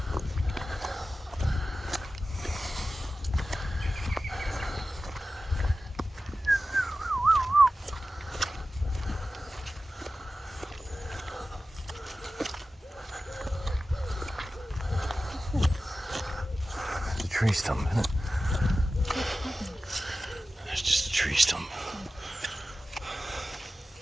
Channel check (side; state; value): both; normal; correlation 0.94